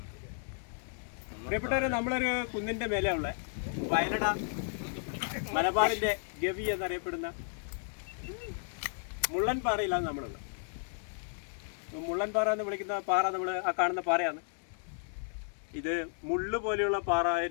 പ്രിയപ്പെട്ടവരെ, നമ്മളൊരു കുന്നിൻ്റെ മേലെയുള്ള വയലട മലബാറിൻ്റെ ഗവി എന്നറിയപ്പെടുന്ന മുള്ളൻപാറയിലാണ് നമ്മളുള്ളത്. മുള്ളൻപാറ എന്ന് വിളിക്കുന്ന പാറ നമ്മൾ ആ കാണുന്ന പാറയാണ്. ഇത് മുള്ളു പോലെയുള്ള പാറ,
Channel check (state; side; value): silent; right; 55 dB below the other